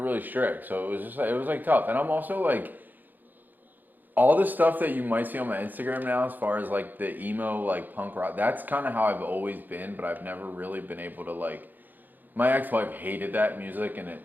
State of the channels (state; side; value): late; left; 0.086 ms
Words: really strict, so it was just like, it was like tough. And I'm also like, all the stuff that you might see on my Instagram now, as far as like the emo, like punk rock, that's kind of how I've always been, but I've never really been able to like, my ex-wife hated that music, and